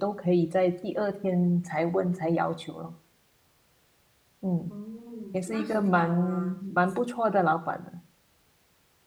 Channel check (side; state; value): both; identical; correlation 1.00